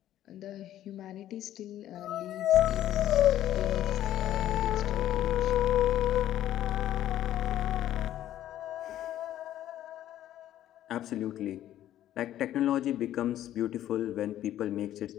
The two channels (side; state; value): right; quieter; 12.5 dB